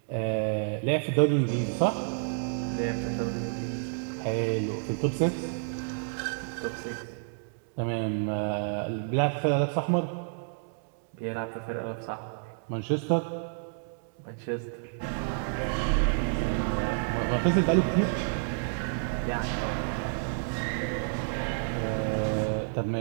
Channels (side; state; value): left; silent; digital silence